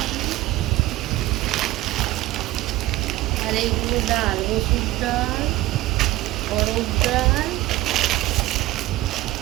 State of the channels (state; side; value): quieter; left; 17.3 dB